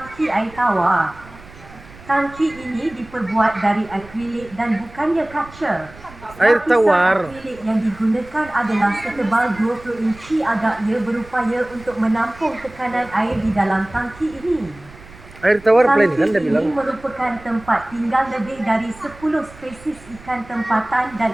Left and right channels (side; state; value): right; noise; rumble, 20 dB below the sound